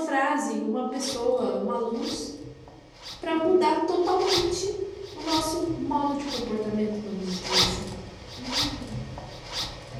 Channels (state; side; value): identical; both; correlation 1.00